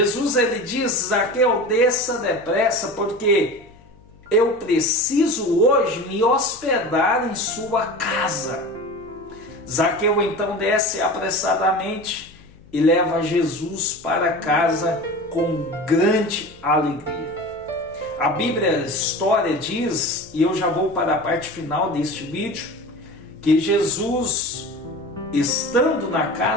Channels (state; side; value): noise; left; hum, 26 dB below the sound